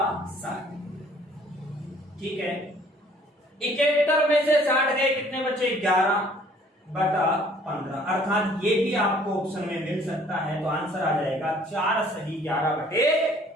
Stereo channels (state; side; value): normal; both; correlation 0.57